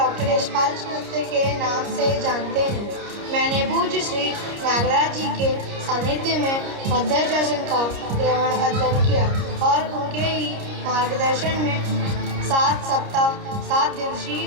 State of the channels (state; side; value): late; left; 30 ms